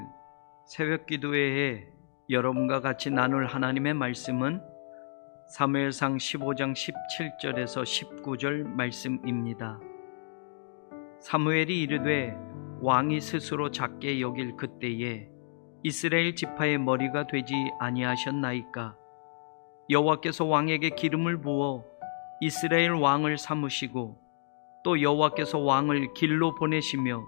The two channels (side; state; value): right; silent; digital silence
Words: 새벽 기도회에 여러분과 같이 나눌 하나님의 말씀은 사무엘상 15장 17절에서 19절 말씀입니다. 사무엘이 이르되 왕이 스스로 작게 여길 그때에 이스라엘 지파의 머리가 되지 아니하셨나이까. 여호와께서 왕에게 기름을 부어 이스라엘 왕을 삼으시고 또 여호와께서 왕을 길로 보내시며